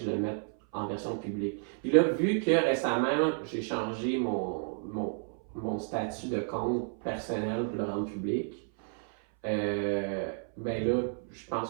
le mette en version publique. Puis là, vu que récemment, j'ai changé mon statut de compte personnel pour le rendre public, ben là, je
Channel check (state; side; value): silent; left; 57 dB below the other